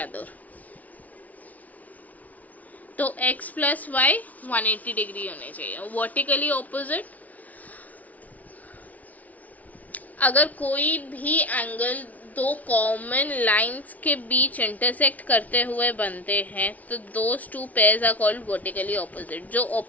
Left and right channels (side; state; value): right; late; 0.074 ms